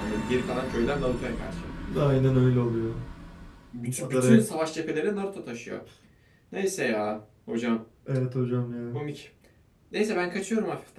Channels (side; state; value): both; identical; correlation 1.00